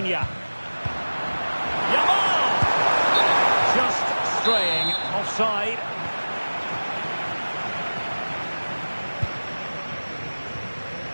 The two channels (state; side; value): inverted; both; correlation -1.00